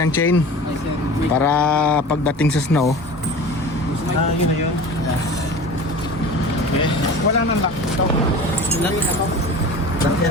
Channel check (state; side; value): normal; both; correlation 0.36